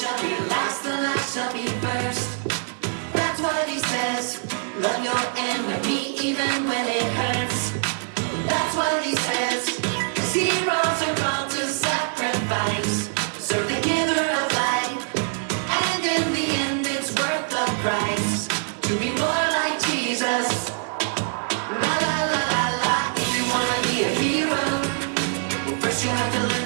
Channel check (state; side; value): silent; left; 63 dB below the other